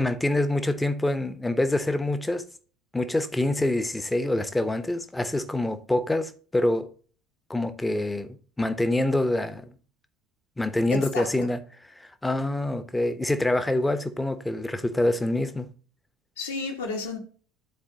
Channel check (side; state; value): both; normal; correlation 0.90